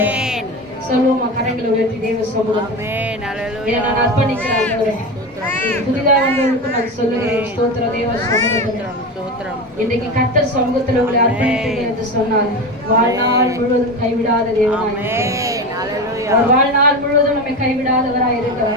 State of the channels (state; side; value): normal; both; correlation 0.23